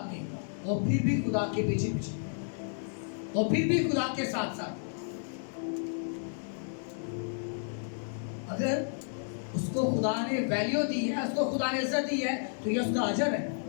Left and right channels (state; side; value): silent; right; digital silence